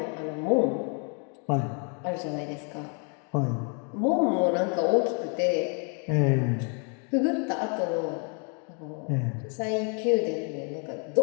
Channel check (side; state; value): right; quieter; 38.5 dB